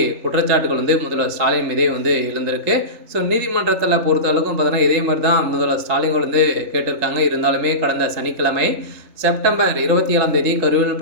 குற்றச்சாட்டுகள் முதல்வர் ஸ்டாலின் மீதே எழுந்திருக்கு. நீதிமன்றத்தில் பொறுத்தளவுக்கும் பார்த்தீங்கன்னா இதே மாதிரி தான் முதல்வர் ஸ்டாலின் கேட்டிருக்காங்க. இருந்தாலுமே கடந்த சனிக்கிழமை செப்டம்பர் 27ஆம் தேதி கரூரில்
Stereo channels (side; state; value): left; late; 3.3 ms